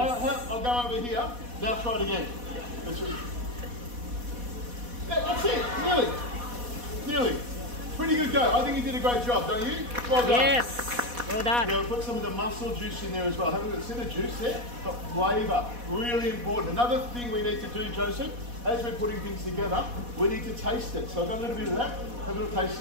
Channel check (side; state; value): left; late; 4.1 ms